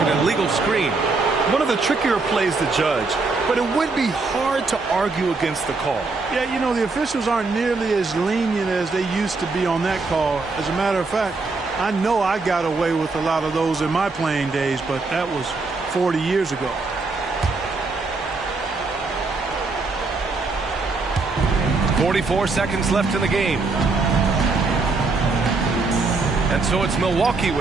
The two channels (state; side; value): quieter; left; 3.9 dB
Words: illegal screen. One of the trickier plays to judge, but it would be hard to argue against the call. Yeah, you know, the officials aren't nearly as lenient as they used to be on that call. As a matter of fact, I know I got away with a lot of those in my playing days, but that was 40 years ago. 44 seconds left in the game. And so it's Milwaukee